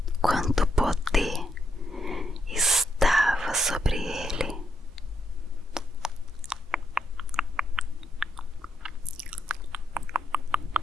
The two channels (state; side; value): normal; both; correlation 0.79